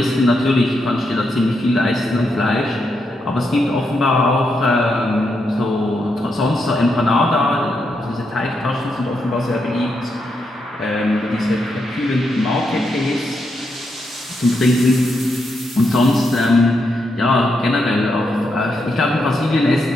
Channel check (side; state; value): both; normal; correlation 0.82